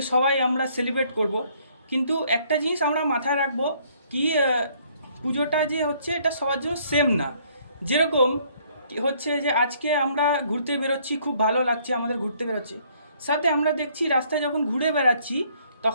সবাই আমরা সেলিব্রেট করব। কিন্তু একটা জিনিস আমরা মাথায় রাখবো, কি পুজোটা যে হচ্ছে এটা সবার জন্য সেম না। যেরকম হচ্ছে যে আজকে আমরা ঘুরতে বেরোচ্ছি, খুব ভালো লাগছে আমাদের ঘুরতে বেরোচ্ছে, সাথে আমরা দেখছি রাস্তায় যখন ঘুরে বেড়াচ্ছি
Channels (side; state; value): both; inverted; correlation -0.64